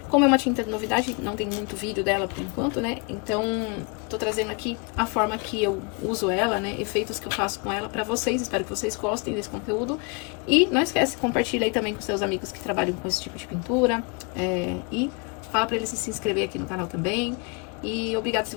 como é uma tinta de novidade, não tem muito vídeo dela por enquanto, né? Então, tô trazendo aqui a forma que eu uso ela, né? Efeitos que eu faço com ela pra vocês. Espero que vocês gostem desse conteúdo. E não esquece, compartilha aí também com seus amigos que trabalham com esse tipo de pintura. E fala pra eles se inscrever aqui no canal também. E obrigado se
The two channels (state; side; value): quieter; right; 32.3 dB